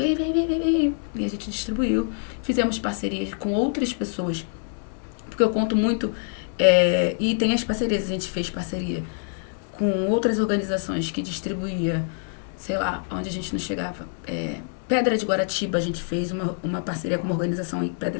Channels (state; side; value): silent; right; digital silence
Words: E a gente distribuiu. Fizemos parcerias com outras pessoas. Porque eu conto muito... e tem as parcerias, a gente fez parceria com outras organizações que distribuía, sei lá, onde a gente não chegava. Pedra de Guaratiba, a gente fez uma parceria com uma organização em